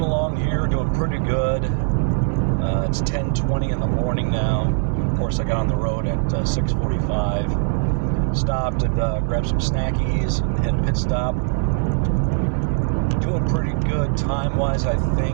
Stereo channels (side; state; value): left; silent; digital silence